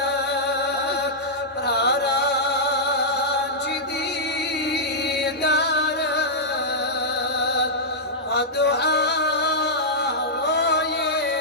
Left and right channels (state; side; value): normal; both; correlation -0.11